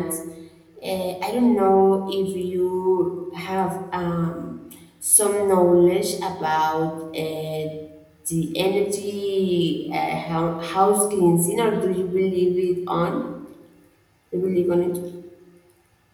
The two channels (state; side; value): identical; both; correlation 1.00